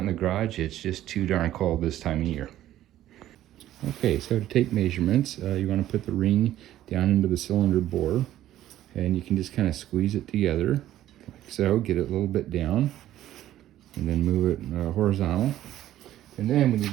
the garage, it's just too darn cold this time of year. Okay, so to take measurements, you want to put the ring down into the cylinder bore. And you can just kind of squeeze it together. So get it a little bit down and then move it horizontal. And then we need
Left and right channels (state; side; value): quieter; left; 13.2 dB